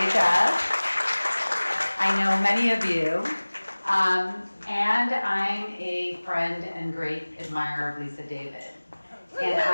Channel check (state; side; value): inverted; both; correlation -1.00